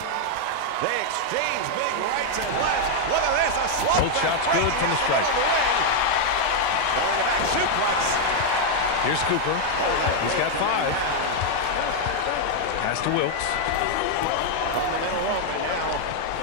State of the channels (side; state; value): both; different; correlation 0.00